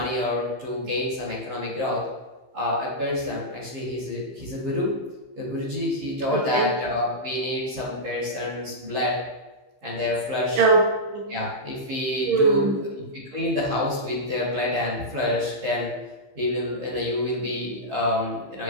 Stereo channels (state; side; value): late; left; 15 ms